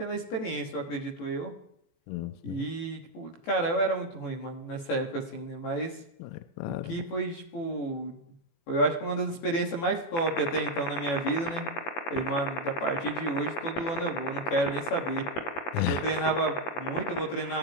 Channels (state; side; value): late; right; 18 ms